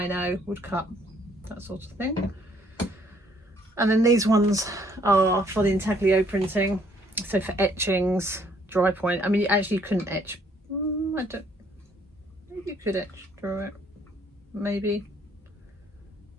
woodcut, that sort of thing. And then these ones are for the intaglio printing, so for etchings, dry point. I mean, actually you couldn't etch. I don't. Maybe you could etch through it. Maybe.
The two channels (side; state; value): both; normal; correlation 0.65